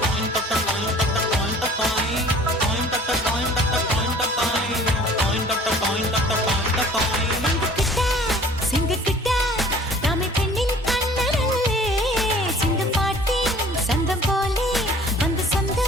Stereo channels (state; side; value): normal; both; correlation 0.50